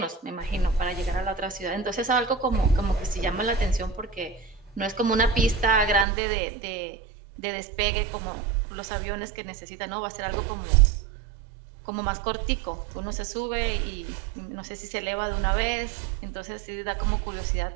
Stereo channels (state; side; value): drops out; left; at 6.1 s